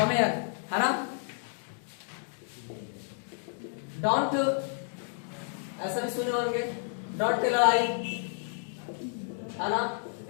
है ना, डोंट, ऐसा भी सुने होंगे, डोंट टेल आई, है ना,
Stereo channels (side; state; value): right; silent; 57 dB below the other